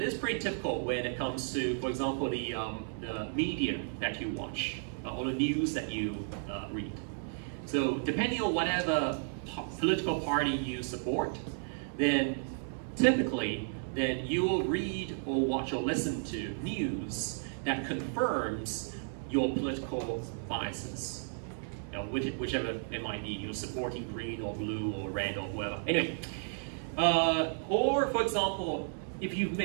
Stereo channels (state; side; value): silent; left; 55 dB below the other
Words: is pretty typical when it comes to, for example, the media that you watch, or the news that you read. So depending on whatever political party you support, then typically, then you will read or watch or listen to news that confirms your political biases. Whichever it might be, you're supporting green or blue or red or whatever. Anyway, or for example, if you've